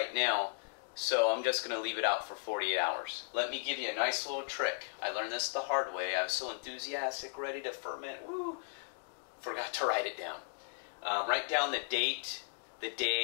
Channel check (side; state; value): right; silent; digital silence